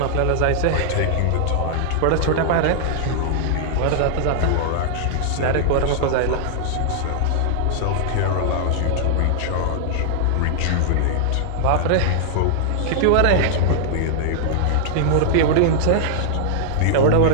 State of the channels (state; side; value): different; both; correlation -0.01